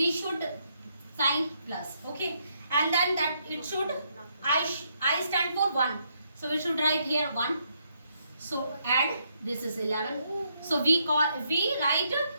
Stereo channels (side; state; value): both; inverted; correlation -0.75